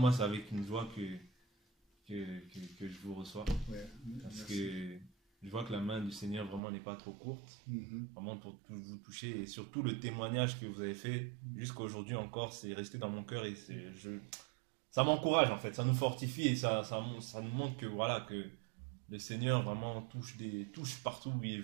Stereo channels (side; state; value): left; drops out; at 6.6 s